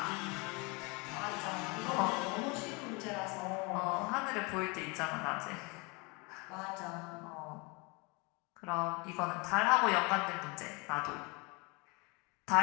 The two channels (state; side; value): quieter; right; 28.8 dB